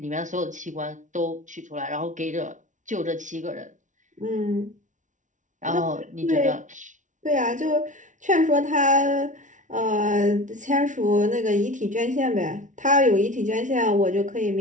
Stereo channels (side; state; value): left; late; 0.37 ms